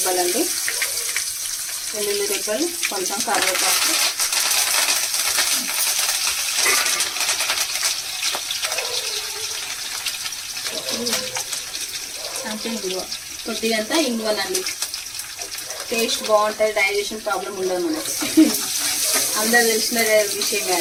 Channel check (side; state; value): both; identical; correlation 1.00